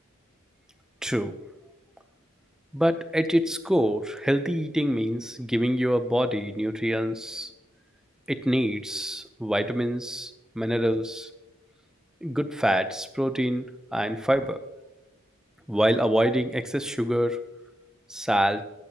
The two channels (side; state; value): both; normal; correlation 0.90